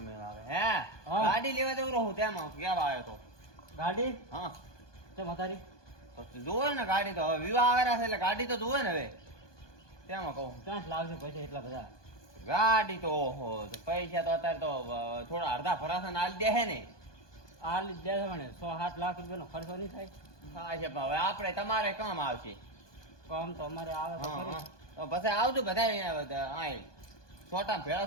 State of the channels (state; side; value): late; right; 1.2 ms